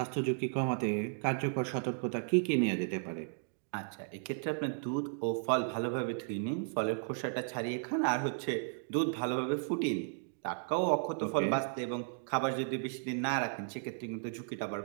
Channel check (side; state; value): left; silent; digital silence